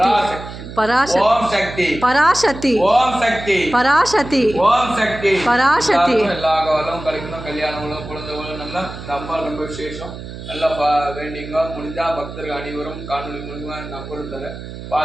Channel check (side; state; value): right; noise; hum, 11 dB below the sound